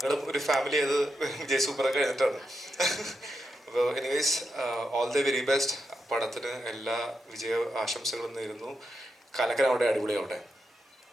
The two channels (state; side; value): normal; both; correlation 0.85